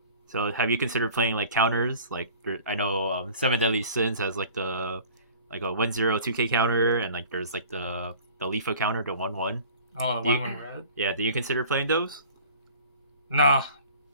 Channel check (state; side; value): inverted; both; correlation -0.46